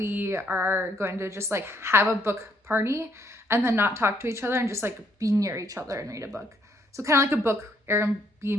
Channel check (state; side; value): normal; both; correlation 0.69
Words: are going to just like have a book party and then not talk to each other and just like be near each other and read a book. So kind of like a book